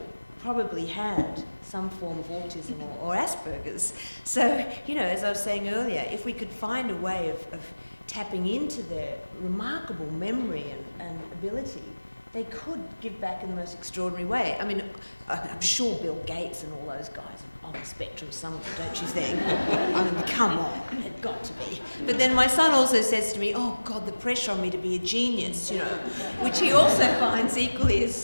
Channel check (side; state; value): both; inverted; correlation -1.00